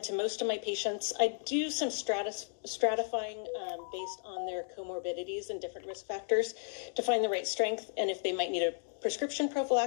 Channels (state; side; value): silent; right; digital silence